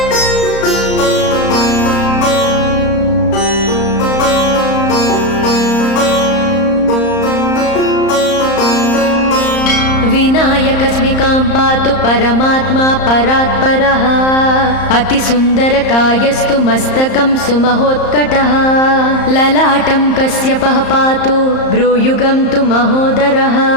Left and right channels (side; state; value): right; late; 34 ms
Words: विनायकस्मिकां पातु परमात्मा परात्परः अतिसुन्दरकायस्तु मस्तकं सुमहोत्कटः ललाटं कश्यपः पातु भ्रूयुगं तु महोदरः